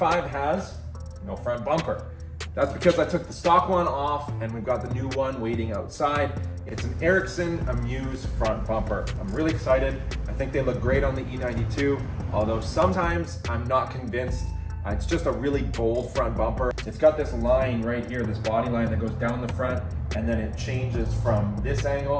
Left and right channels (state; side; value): identical; both; correlation 1.00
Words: has no front bumper. That's because I took the stock one off and we've got the new one waiting outside. It's an Ericsson Amuse front bumper. I'm really excited. I think they look great on the E92, although sometimes I'm not convinced. It's just a really bold front bumper. It's got this line right here, this body line that goes down the front, and then it changes from this